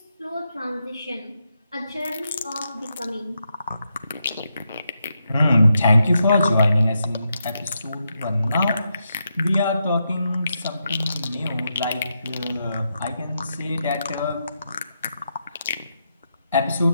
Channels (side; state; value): both; inverted; correlation -0.84